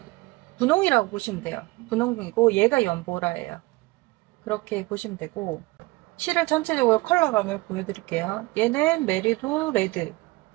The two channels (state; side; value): quieter; left; 22.0 dB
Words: 분홍이라고 보시면 돼요. 분홍이고 얘가 연보라예요. 그렇게 보시면 되고, 실을 전체적으로 컬러감을 보여드릴게요. 얘는 메리도 레드.